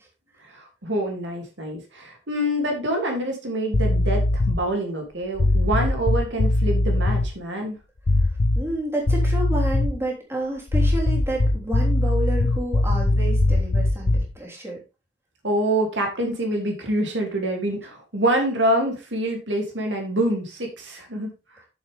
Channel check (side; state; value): both; normal; correlation 0.67